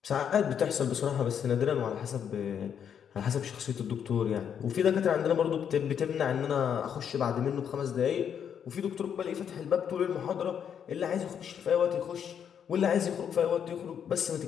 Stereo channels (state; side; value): quieter; right; 8.2 dB